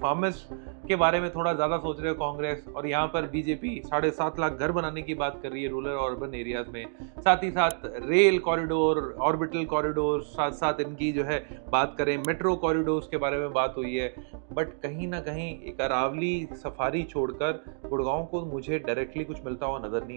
फार्मर्स के बारे में थोड़ा ज्यादा सोच रहे हो कांग्रेस, और यहाँ पर बीजेपी 7.5 लाख घर बनाने की बात कर रही है रूरल और अर्बन एरियाज में। साथ ही साथ रेल कॉरिडोर, ऑर्बिटल कॉरिडोर, साथ साथ इनकी जो है बात करें मेट्रो कॉरिडोर्स के बारे में बात हुई है। बट कहीं ना कहीं एक अरावली सफारी छोड़कर गुड़गांव को मुझे डायरेक्टली कुछ मिलता हुआ नजर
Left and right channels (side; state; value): left; silent; digital silence